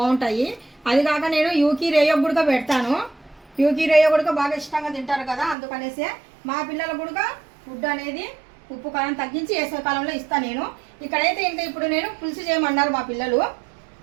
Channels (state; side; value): drops out; left; at 5.6 s